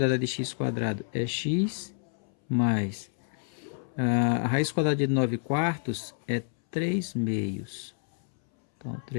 de x² é x, mais a raiz quadrada de 9 quartos é 3 meios. Então,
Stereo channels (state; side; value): silent; right; 59 dB below the other